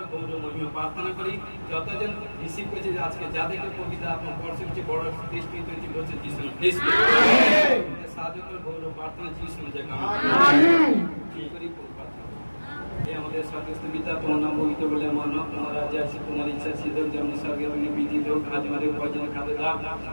গৌরব মহিমা প্রার্থনা করি। যতজন রিসিভ করেছে আজকে যাদেরকে কবিতা আপনার বর্ষের চেয়ে বড় দৃষ্টি তৈরি করছে যিশু সাহায্য করে গৌরব প্রার্থনা যিশু জায়গা করি। আমাদের স্বর্গস্থ পিতা তোমার নাম পবিত্র বলে আমার নাম তোমার রাজ্য আসে তোমার ইচ্ছা সিদ্ধ যেমন স্বর্গে বিধিত হোক। আজ আমাদের ভোজন খাদ্য দাও।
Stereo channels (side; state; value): both; inverted; correlation -1.00